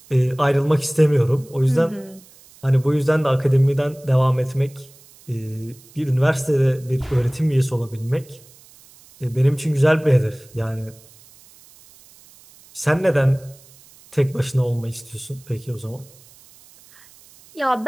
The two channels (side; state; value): right; noise; hiss, 25 dB below the sound